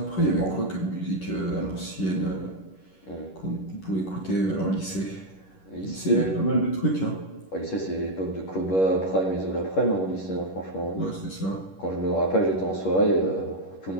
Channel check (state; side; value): late; right; 10 ms